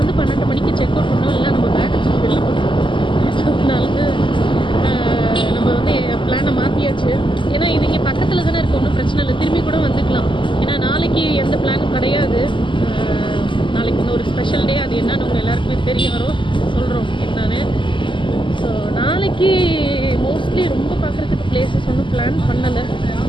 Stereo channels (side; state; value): right; late; 0.24 ms